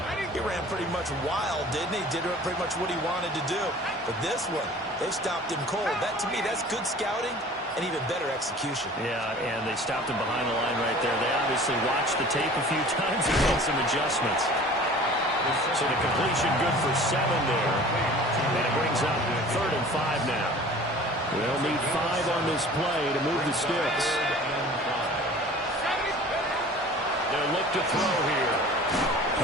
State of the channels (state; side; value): normal; both; correlation 0.45